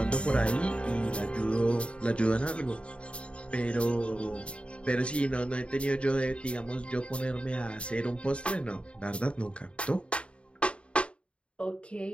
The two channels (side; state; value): right; late; 0.058 ms